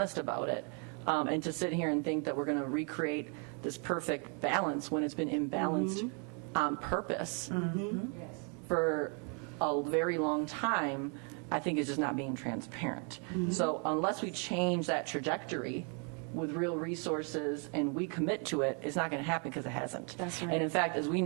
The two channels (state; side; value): quieter; left; 38.2 dB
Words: about it, and to sit here and think that we're going to recreate this perfect balance when it's been imbalanced on purpose for a very long time, I think is just not being transparent. So unless we change that trajectory with real resources and we commit to it, it's not going to happen because it hasn't. That's right. And in fact, as we